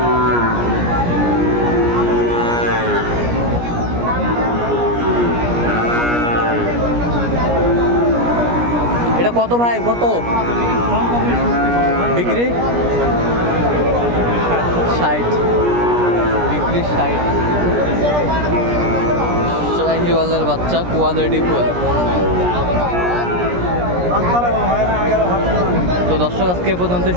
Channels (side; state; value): left; late; 17 ms